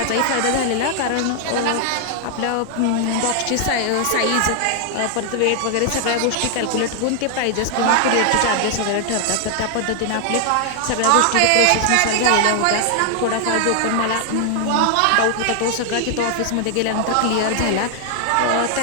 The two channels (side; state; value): both; different; correlation 0.00